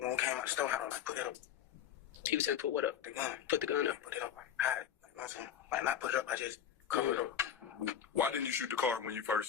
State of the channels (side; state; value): right; quieter; 9.2 dB